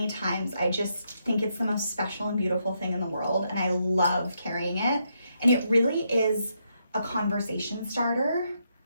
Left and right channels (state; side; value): inverted; both; correlation -0.79